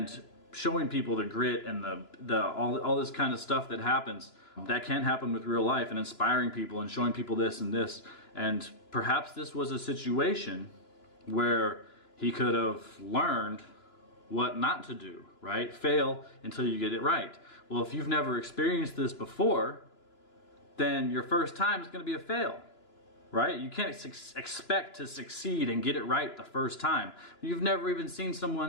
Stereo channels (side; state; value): right; late; 2.9 ms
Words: showing people the grit and all this kind of stuff that happens, that can happen with real life, and inspiring people and showing people this and this, and perhaps this was a situation where he could have learned what not to do, right? Fail until you get it right. Well, if you've never experienced this before, then your first time is going to be a fail, right? You can't expect to succeed and get it right the first time. You've never even seen